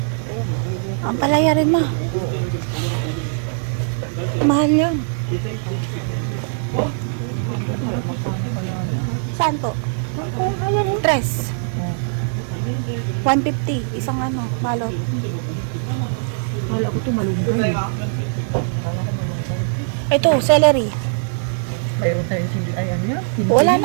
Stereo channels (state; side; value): silent; left; 62 dB below the other